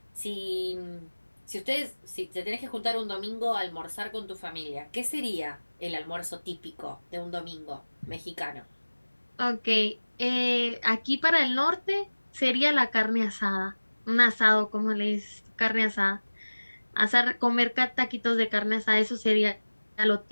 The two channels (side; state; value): both; inverted; correlation -1.00